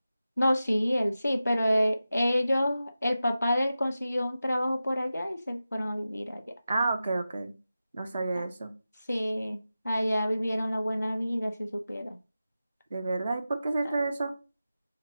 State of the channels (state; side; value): inverted; both; correlation -0.93